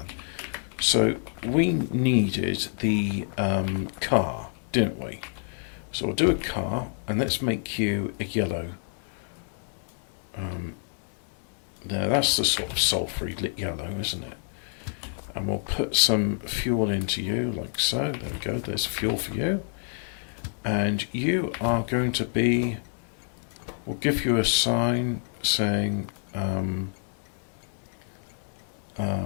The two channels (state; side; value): silent; right; 60 dB below the other